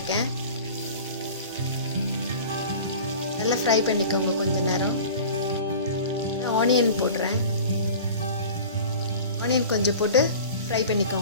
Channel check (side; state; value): both; inverted; correlation -0.39